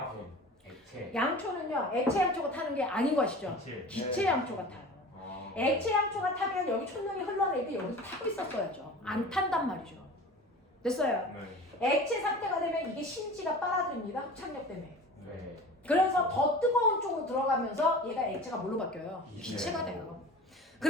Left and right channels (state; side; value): normal; both; correlation 0.38